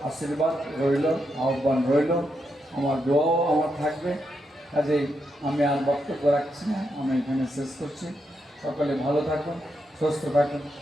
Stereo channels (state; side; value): normal; both; correlation 0.83